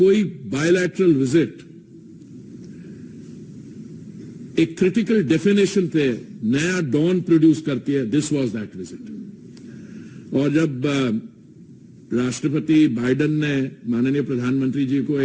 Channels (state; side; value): identical; both; correlation 1.00